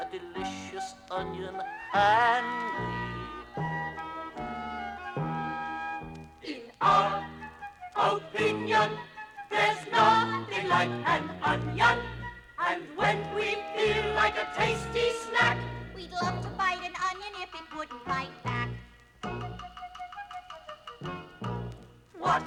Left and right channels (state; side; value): identical; both; correlation 1.00